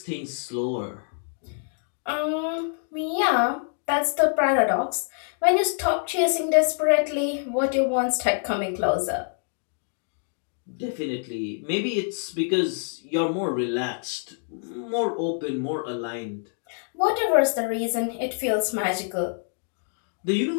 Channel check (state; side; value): silent; right; 58 dB below the other